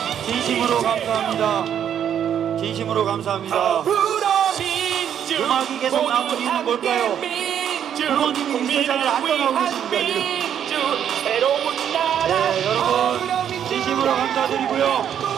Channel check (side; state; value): left; quieter; 9.2 dB